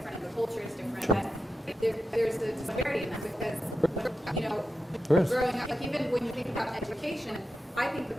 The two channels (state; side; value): normal; both; correlation 0.90